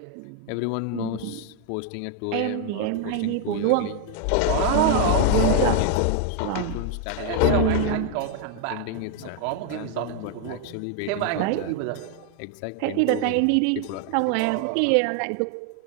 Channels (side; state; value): both; different; correlation 0.01